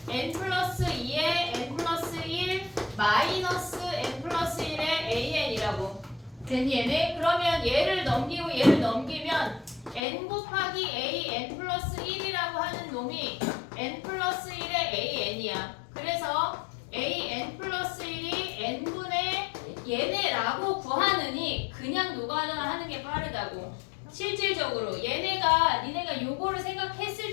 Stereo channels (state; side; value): drops out; right; at 10.0 s